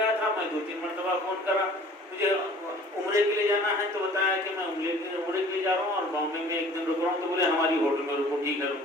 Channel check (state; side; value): normal; both; correlation 0.50